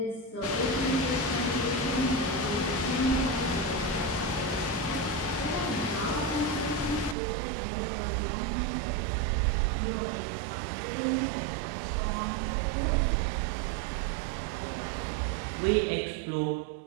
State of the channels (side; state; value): left; drops out; at 7.2 s